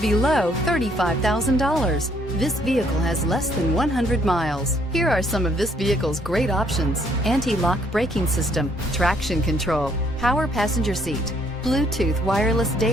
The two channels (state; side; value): normal; both; correlation 0.66